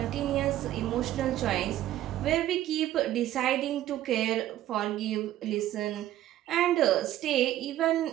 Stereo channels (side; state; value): left; quieter; 13.4 dB